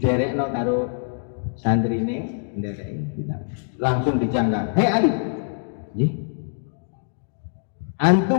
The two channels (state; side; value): silent; right; digital silence